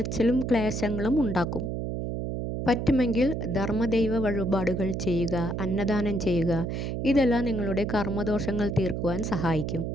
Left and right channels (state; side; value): noise; right; hum, 3 dB below the sound